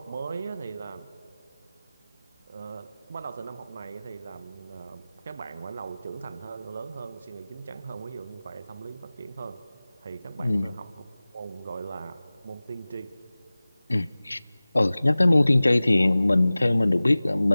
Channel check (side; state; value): both; inverted; correlation -0.98